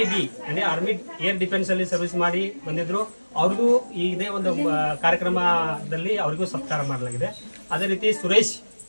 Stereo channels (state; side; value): inverted; both; correlation -1.00